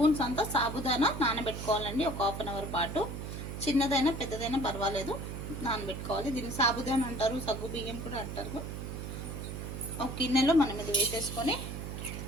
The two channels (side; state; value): right; noise; hum, 7 dB below the sound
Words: అంతా సాబుదానా నానబెట్టుకోవాలండి. ఒక హాఫ్ అన్ అవర్ పాటు, చిన్నదైనా పెద్దదైనా పర్వాలేదు, నానబెట్టుకోవాలి. దీన్ని సాబుదానా అంటారు, సగ్గు బియ్యం కూడా అంటారు. ఒక గిన్నెలో మనం ఇది వేసేసుకొని